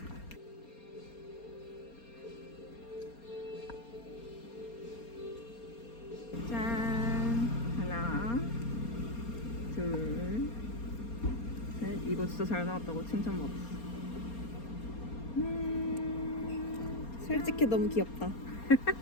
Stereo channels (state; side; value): late; right; 4.3 ms